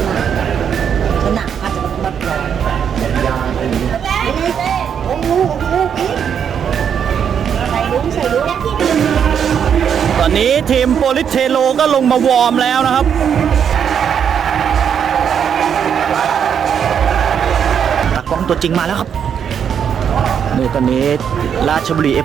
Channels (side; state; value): left; quieter; 7.9 dB